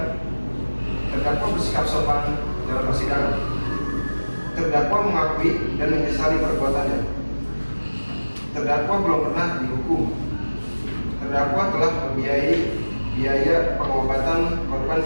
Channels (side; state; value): both; inverted; correlation -1.00